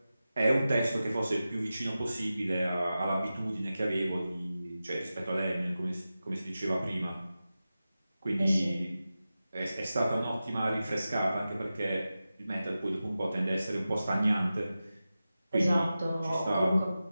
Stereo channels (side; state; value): both; inverted; correlation -0.94